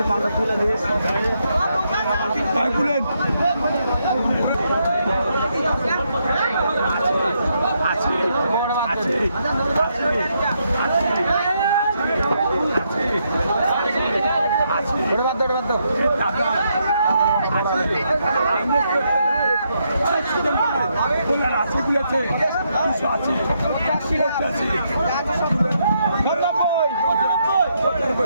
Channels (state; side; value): inverted; both; correlation -0.78